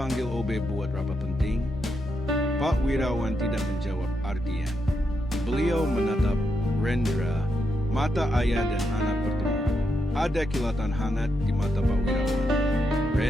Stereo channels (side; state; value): both; normal; correlation 0.82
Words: OB buat rapat penting? Pak Wirawan tidak menjawab Ardian. Beliau menatap Rendra, mata ayah dan anak bertemu. Ada kilatan hangat di mata Pak Wirawan.